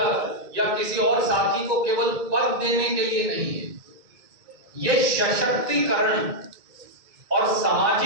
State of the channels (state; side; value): late; left; 2.2 ms